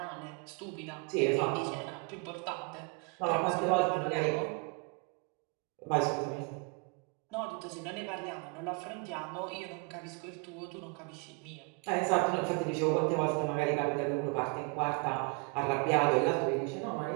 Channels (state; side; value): quieter; left; 33.3 dB